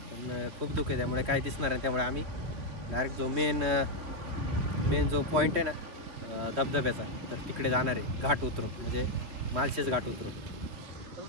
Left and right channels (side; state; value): left; late; 2.9 ms